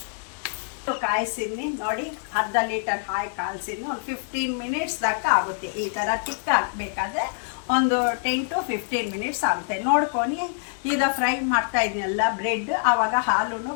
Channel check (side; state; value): right; silent; digital silence